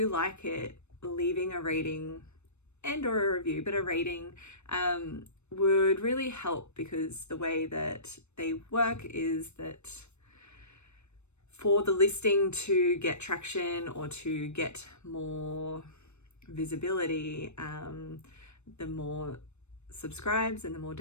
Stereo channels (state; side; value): late; right; 0.82 ms